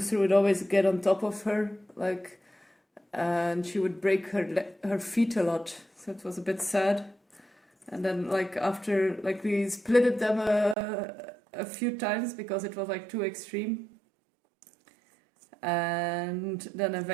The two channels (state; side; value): drops out; left; at 10.8 s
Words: would always get on top of her, like, and she would break her feet a lot. So it was a bit sad. And then like after, like, we splitted them a few times because it was like too extreme. And then